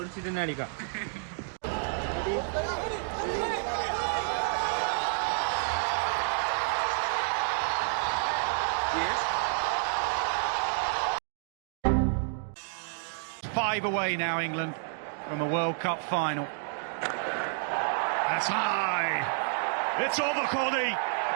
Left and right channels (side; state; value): left; silent; digital silence